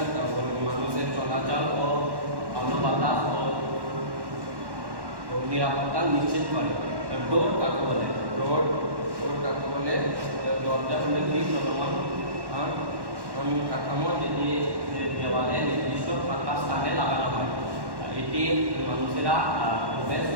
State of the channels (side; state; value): left; late; 1.1 ms